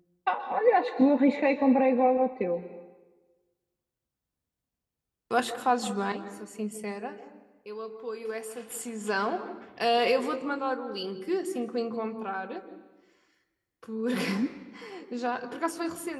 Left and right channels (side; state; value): both; identical; correlation 1.00